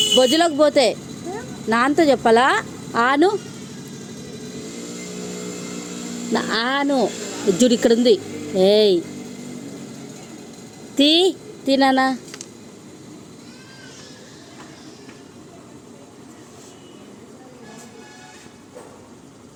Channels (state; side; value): identical; both; correlation 1.00